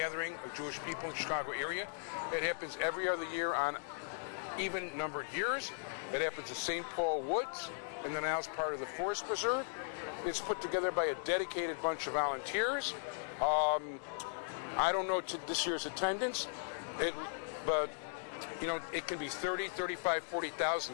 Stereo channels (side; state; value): right; silent; digital silence